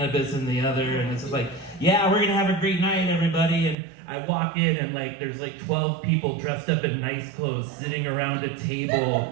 in the other. And it's just like, yeah, we're gonna have a great night, everybody. And I walk in and like there's like 12 people dressed up in nice clothes sitting around a table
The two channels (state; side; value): drops out; left; at 3.8 s